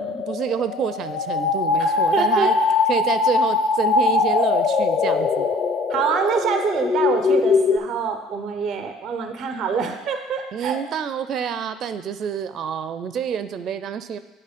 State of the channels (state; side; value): normal; both; correlation 0.51